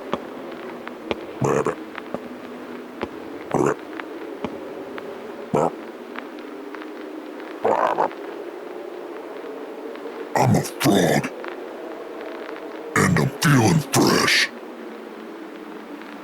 Ribbit. Ribbit. I'm a frog. And I'm feeling fresh.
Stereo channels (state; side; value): identical; both; correlation 1.00